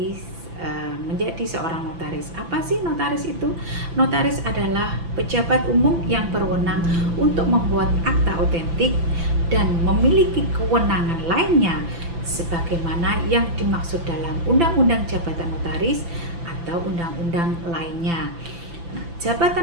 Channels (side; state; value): left; late; 5.9 ms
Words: menjadi seorang notaris. Apa sih notaris itu? Notaris adalah pejabat umum yang berwenang untuk membuat akta otentik dan memiliki kewenangan lainnya sebagaimana yang dimaksud dalam Undang-Undang Jabatan Notaris atau undang-undang lainnya. Nah,